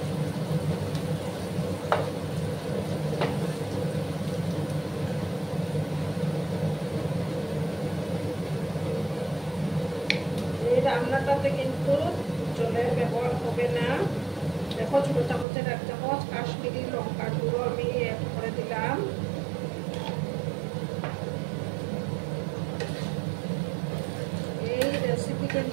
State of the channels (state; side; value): drops out; left; at 15.5 s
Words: রান্নাটাতে কিন্তু জলের ব্যবহার হবে না। দেখো ছোট চামচের 1 চামচ কাশ্মীরি লঙ্কার গুঁড়ো আমি অ্যাড করে দিলাম। এই রেসিপি